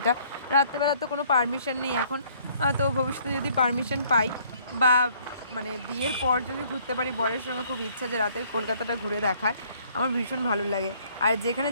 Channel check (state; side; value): inverted; both; correlation -0.62